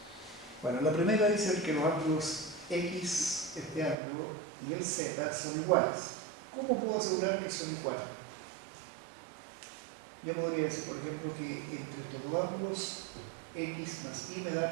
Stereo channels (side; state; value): left; drops out; at 4.0 s